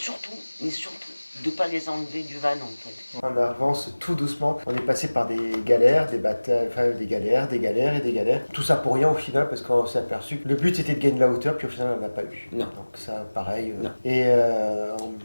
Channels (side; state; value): both; inverted; correlation -1.00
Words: de pas les enlever du van en fait. On avance tout doucement. On est passé par des galères, des batailles, enfin des galères et des galères. Tout ça pour rien au final parce qu'on s'est aperçu que le but c'était de gagner de la hauteur, puis au final on n'a pas eu. Non. Donc ça, pareil. Non. Et en